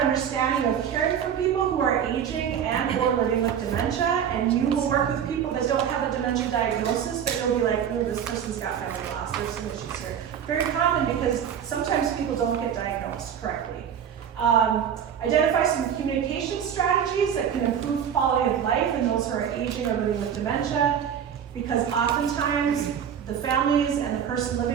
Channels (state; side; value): quieter; left; 8.6 dB